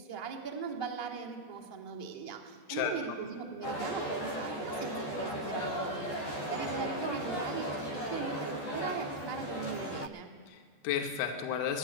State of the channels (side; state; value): right; late; 14 ms